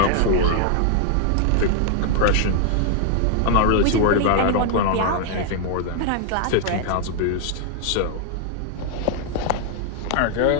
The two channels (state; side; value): different; both; correlation 0.00